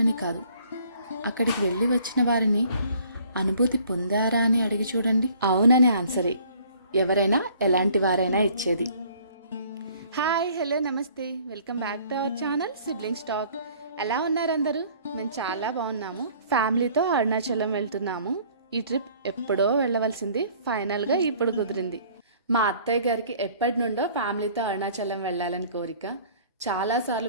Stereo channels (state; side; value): inverted; both; correlation -0.55